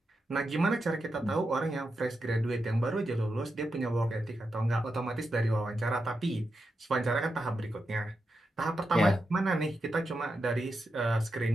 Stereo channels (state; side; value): normal; both; correlation 0.87